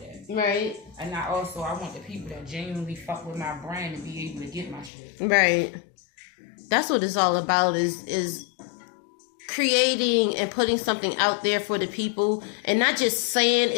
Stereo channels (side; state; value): right; drops out; at 4.9 s